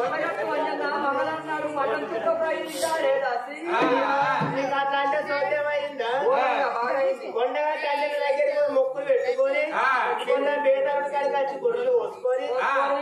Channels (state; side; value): identical; both; correlation 1.00